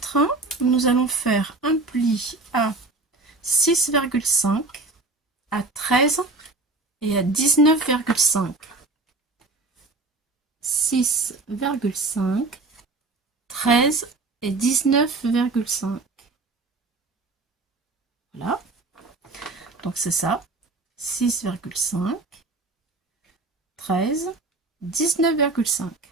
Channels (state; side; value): quieter; left; 3.3 dB